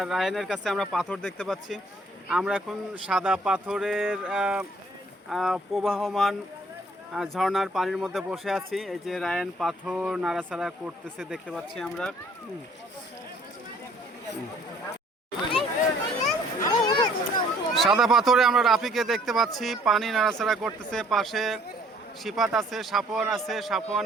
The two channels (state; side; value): normal; both; correlation 0.60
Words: রায়নের কাছে আমরা পাথর দেখতে পাচ্ছি। আমরা এখন সাদা পাথরের প্রবাহমান ঝর্ণার পানির মধ্যে বসে আছি। এই যে রায়ন পাথর নাড়াচাড়া করতেছে দেখতে পাচ্ছি আমরা। সাদা পাথরে আমরা রাফিকে দেখতে পাচ্ছি, পানি নাড়াচাড়া করতেছে। পাশে সিফাত আছে, সাফওয়ান আছে,